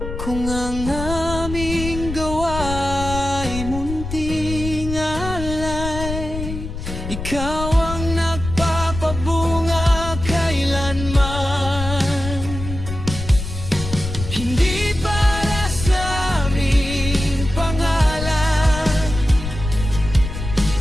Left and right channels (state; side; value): noise; left; rumble, 7 dB below the sound